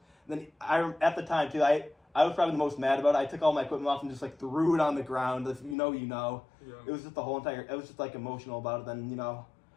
And then at the time, too, I was probably the most mad about it. I took all my equipment off and just, like, threw it on the ground. If you know, you know. Yeah. It was just it was just, like, emotional about it. Then, you know.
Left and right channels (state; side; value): drops out; right; at 5.8 s